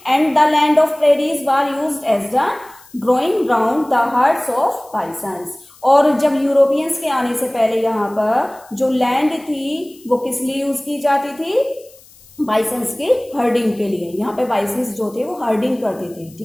And the land of prairies were used as the growing ground the herds of bisons. और जब यूरोपियंस के आने से पहले यहाँ पर जो लैंड थी वो किस लिए यूज की जाती थी? बाइसन्स के हर्डिंग के लिए। यहाँ पे बाइसन्स जो थे वो हर्डिंग करते थे।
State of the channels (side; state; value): left; noise; hiss, 25 dB below the sound